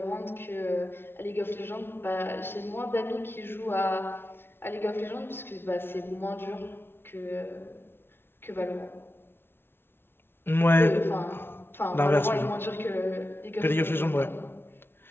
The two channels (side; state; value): right; late; 0.11 ms